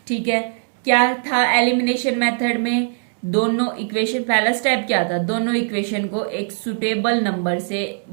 ठीक है। क्या था एलिमिनेशन मेथड में, दोनों इक्वेशन, पहला स्टेप क्या था, दोनों इक्वेशन को एक सुटेबल नंबर से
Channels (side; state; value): left; silent; digital silence